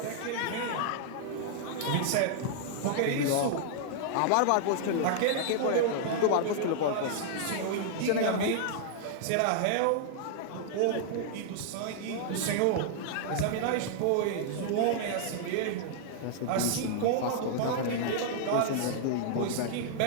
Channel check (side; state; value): both; different; correlation -0.01